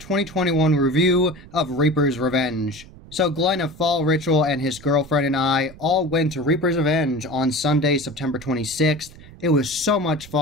review of Reaper's Revenge. So Glenn of Fall Ritual and his girlfriend and I all went to Reaper's Revenge on Sunday, September 26th. It was so much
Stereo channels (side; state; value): right; noise; rumble, 19 dB below the sound